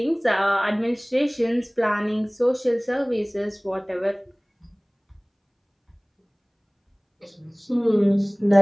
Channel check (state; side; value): identical; both; correlation 1.00